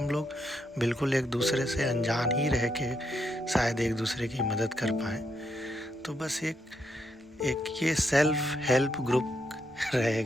लोग बिल्कुल एक दूसरे से अनजान ही रह के शायद एक दूसरे की मदद कर पाएँ। तो बस एक ये सेल्फ हेल्प ग्रुप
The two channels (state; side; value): normal; both; correlation 0.79